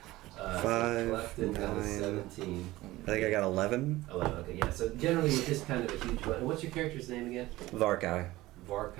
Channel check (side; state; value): left; quieter; 17.9 dB